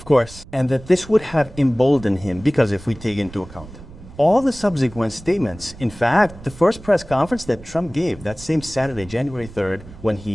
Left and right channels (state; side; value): noise; right; rumble, 18 dB below the sound